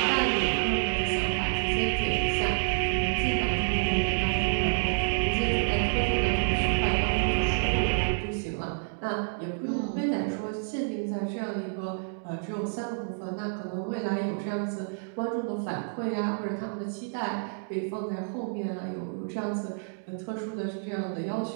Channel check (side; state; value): left; silent; digital silence